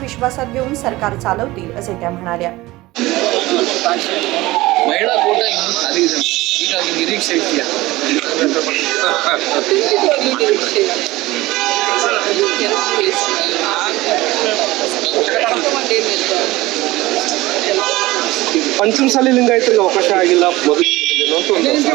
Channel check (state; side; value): quieter; left; 19.1 dB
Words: विश्वासात घेऊन सरकार चालवतील असे त्या म्हणाल्या. ಮಹಿಳಾ ಕೋಟ ಇನ್ನೂ ಖಾಲಿ ಇದೆ. ಹೀಗಾಗಿ ನಿರೀಕ್ಷೆ ಇದೆಯಾ? ಪಂಚಮಸಾಲಿ ಲಿಂಗಾಯತರಿಗೆ ಅವಕಾಶ ಆಗಿಲ್ಲ.